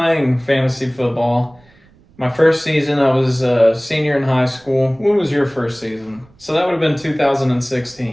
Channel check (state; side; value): noise; right; rumble, 29 dB below the sound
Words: fantasy football, my first season, I was a senior in high school. When was your first season? So that would have been